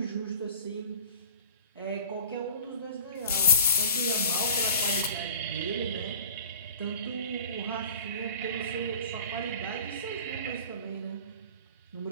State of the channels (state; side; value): inverted; both; correlation -0.41